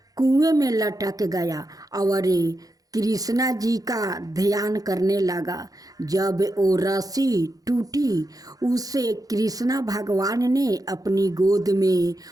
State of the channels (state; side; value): late; left; 0.17 ms